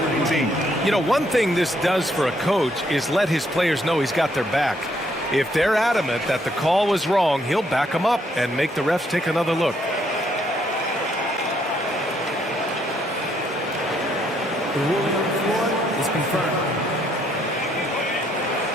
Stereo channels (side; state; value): both; normal; correlation 0.71